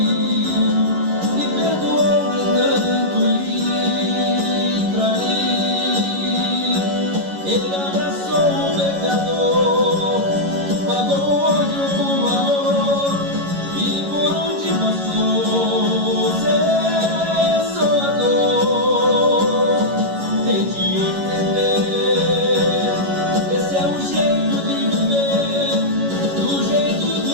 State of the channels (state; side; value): late; left; 11 ms